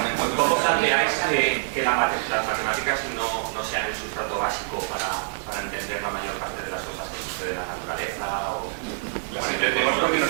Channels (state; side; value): silent; left; 58 dB below the other